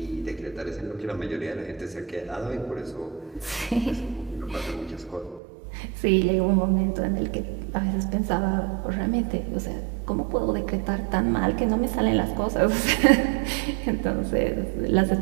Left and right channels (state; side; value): drops out; left; at 5.4 s